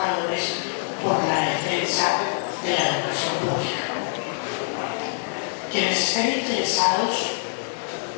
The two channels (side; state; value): right; silent; 62 dB below the other